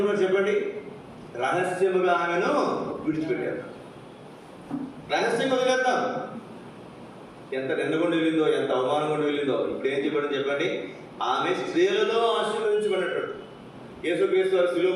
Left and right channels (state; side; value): identical; both; correlation 1.00